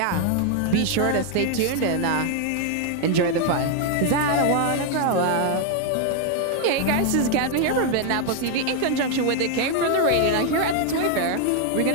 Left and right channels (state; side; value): different; both; correlation 0.00